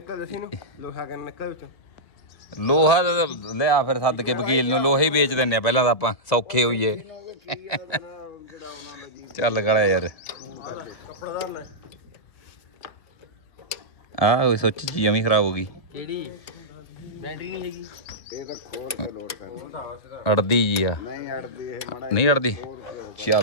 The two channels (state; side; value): late; right; 1.9 ms